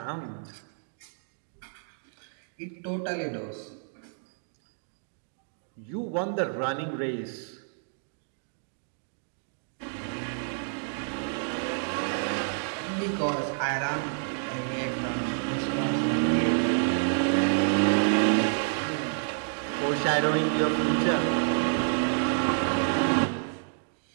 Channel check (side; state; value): left; silent; digital silence